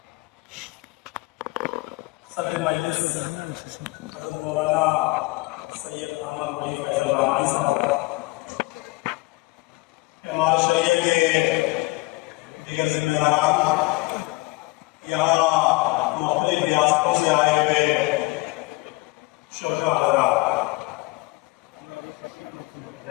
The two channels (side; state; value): right; quieter; 22.8 dB